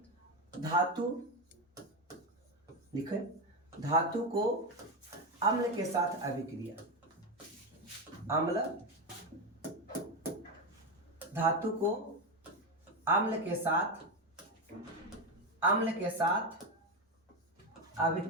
धातु, लिखे, धातु को अम्ल के साथ अभिक्रिया। धातु को अम्ल के साथ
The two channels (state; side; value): normal; both; correlation 0.13